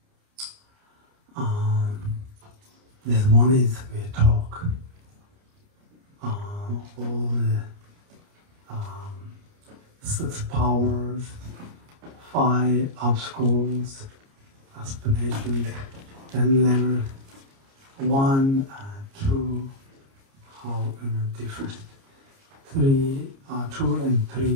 This morning we talk all the 6 powers, 5 obstacles, aspirations, then level 1 and 2, how different. 2 and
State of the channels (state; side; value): late; left; 29 ms